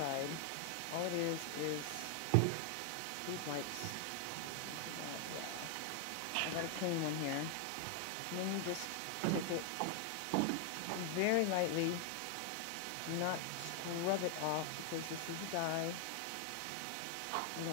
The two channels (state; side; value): different; both; correlation 0.00